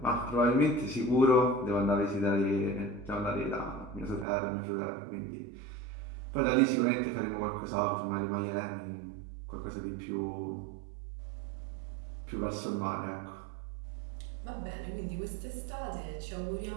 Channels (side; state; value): left; drops out; at 4.2 s